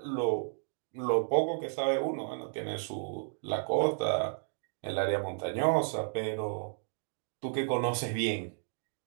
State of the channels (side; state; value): left; silent; digital silence